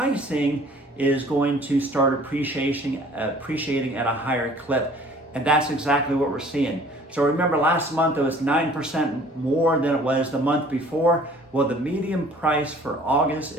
is going to start appreciating at a higher clip. And that's exactly what we're seeing. So remember, last month it was 9% more than it was the month before. Well, the median price for August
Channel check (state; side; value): normal; both; correlation 0.52